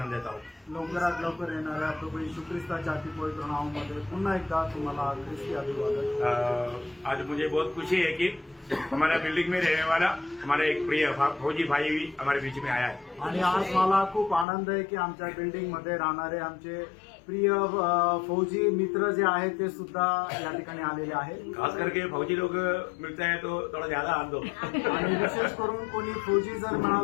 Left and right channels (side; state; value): right; drops out; at 14.5 s